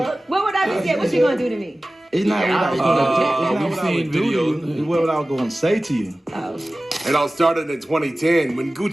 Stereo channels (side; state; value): both; normal; correlation 0.97